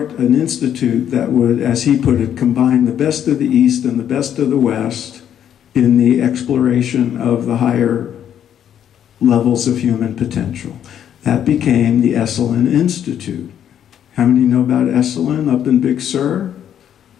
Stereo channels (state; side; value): quieter; right; 9.7 dB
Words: an institute that would, as he put it, combine the best of the East and the best of the West in the exploration of the higher levels of human potential. That became the Esalen Institute. How many know about Esalen up in Big Sur?